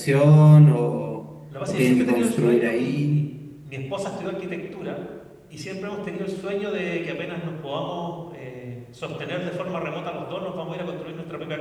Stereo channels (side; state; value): both; identical; correlation 1.00